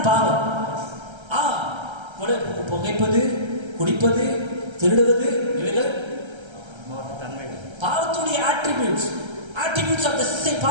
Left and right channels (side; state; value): left; late; 1.3 ms